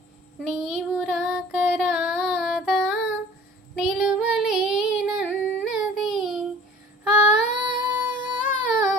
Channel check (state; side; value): normal; both; correlation 0.47